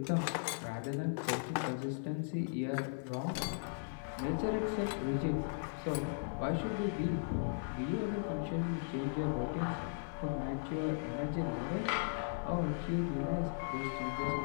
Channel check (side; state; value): right; silent; 53 dB below the other